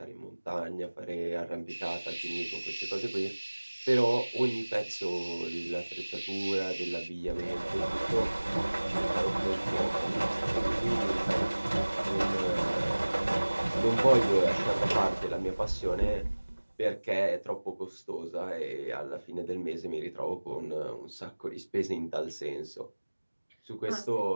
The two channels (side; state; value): both; inverted; correlation -1.00